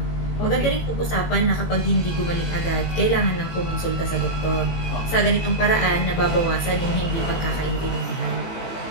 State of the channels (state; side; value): late; right; 18 ms